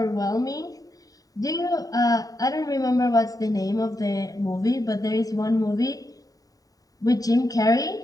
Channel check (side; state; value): right; late; 0.18 ms